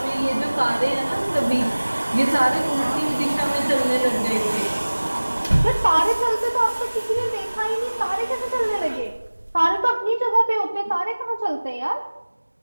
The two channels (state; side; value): inverted; both; correlation -1.00